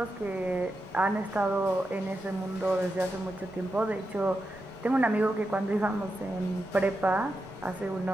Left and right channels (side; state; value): both; normal; correlation 0.88